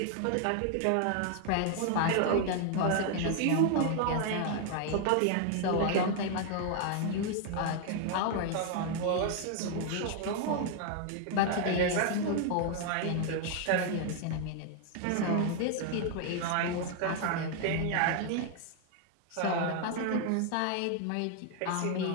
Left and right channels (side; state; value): both; different; correlation 0.00